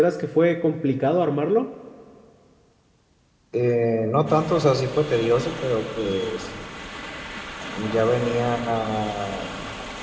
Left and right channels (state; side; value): identical; both; correlation 1.00